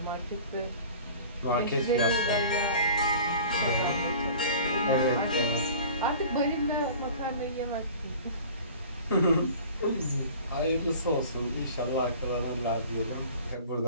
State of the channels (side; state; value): both; inverted; correlation -0.43